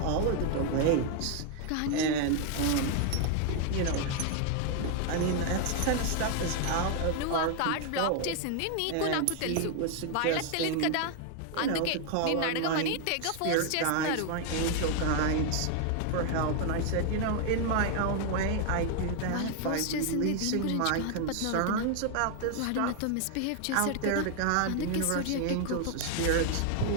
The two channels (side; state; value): both; different; correlation 0.00